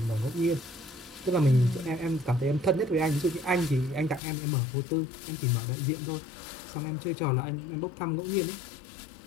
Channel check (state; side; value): drops out; right; at 4.2 s